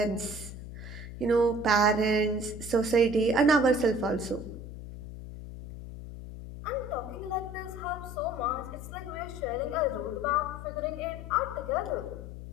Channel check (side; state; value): left; noise; hum, 11 dB below the sound